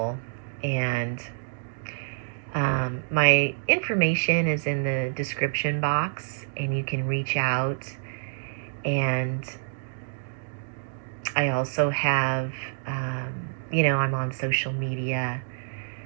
And my information is in the description box, and you can reach out. And I also have, I'm on social media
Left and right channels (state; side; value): silent; left; digital silence